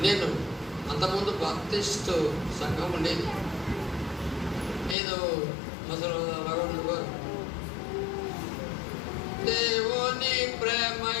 నేను అంతకుముందు బాప్టిస్టు సంఘం ఉండేది. ఏదో మొదలు రఘుడు గారు దేవుని ప్రేమ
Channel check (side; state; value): right; drops out; at 5.0 s